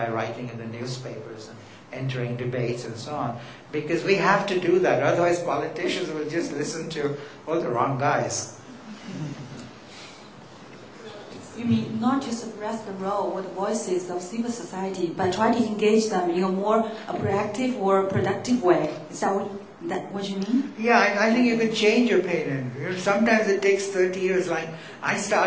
writing in the newspapers and entering debates and so on. Because we have to do that, otherwise politicians will just listen to all the wrong guys. You mean not to suppress the role or the voices of civil society, but try to engage them in a more proactive or productive way? Is that what you mean? Yeah, I think you can change your opinion. Sometimes it takes 30 years. Like, I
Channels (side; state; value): both; identical; correlation 1.00